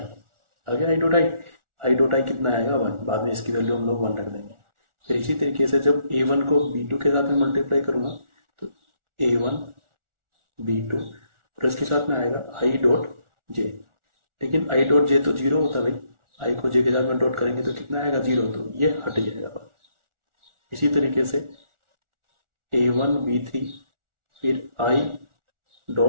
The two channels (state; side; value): late; left; 1.4 ms